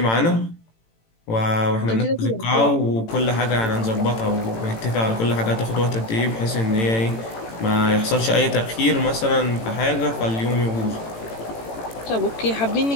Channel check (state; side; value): late; right; 18 ms